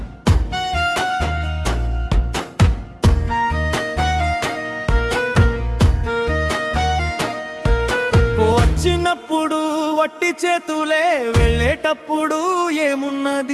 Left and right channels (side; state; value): both; identical; correlation 1.00